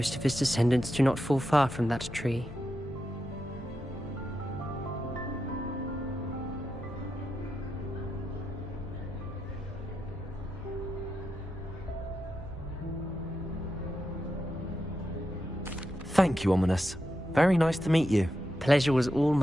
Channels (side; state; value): both; normal; correlation 0.87